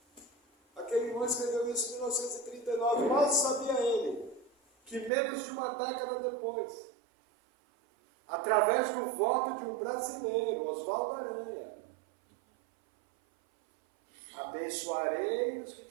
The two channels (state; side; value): drops out; left; at 5.1 s